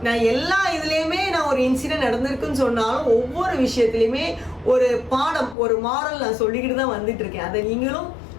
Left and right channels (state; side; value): drops out; right; at 5.6 s